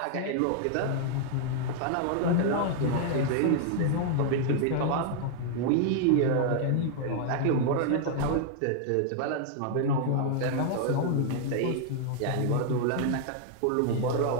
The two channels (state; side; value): different; both; correlation 0.00